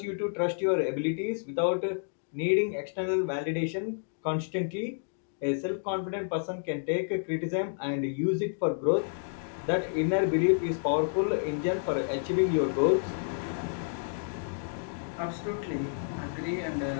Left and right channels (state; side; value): silent; right; digital silence